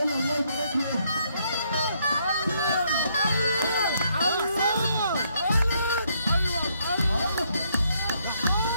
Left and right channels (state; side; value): inverted; both; correlation -0.71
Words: الله يبارك لك.